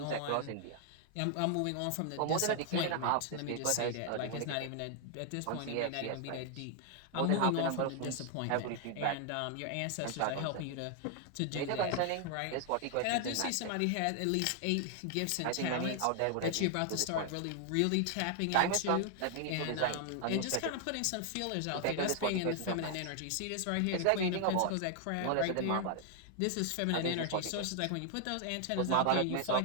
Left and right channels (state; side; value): different; both; correlation 0.00